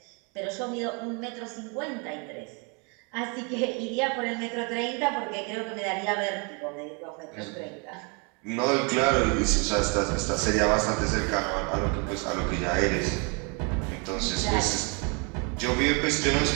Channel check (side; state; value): left; quieter; 33.9 dB